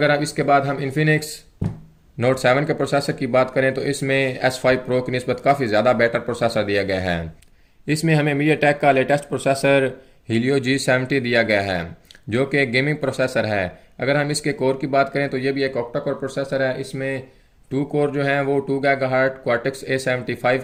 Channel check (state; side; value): identical; both; correlation 1.00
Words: अब इसके बाद हम इन्फिनिक्स नोट 7 के प्रोसेसर की बात करें तो इसमें S5 Pro की निस्बत काफ़ी ज़्यादा बेटर प्रोसेसर दिया गया है। इसमें हमें मीडियाटेक का लेटेस्ट प्रोसेसर Helio G70 दिया गया है, जो कि एक गेमिंग प्रोसेसर है। अगर हम इसके कोर की बात करें तो ये भी एक ऑक्टा कोर प्रोसेसर है। इसमें 2 कोर जो हैं वो 2 GHz Cortex A75